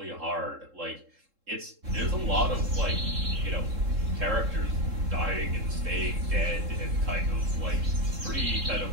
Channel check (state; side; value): late; left; 3.7 ms